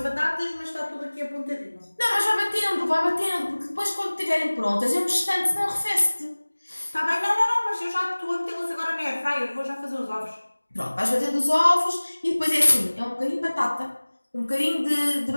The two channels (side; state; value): both; inverted; correlation -1.00